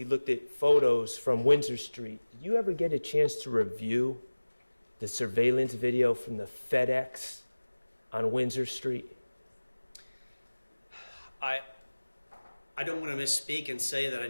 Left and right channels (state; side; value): inverted; both; correlation -1.00